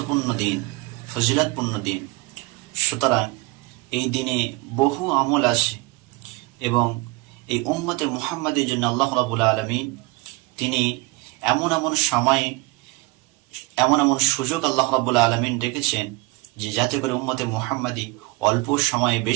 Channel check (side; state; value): left; quieter; 22.5 dB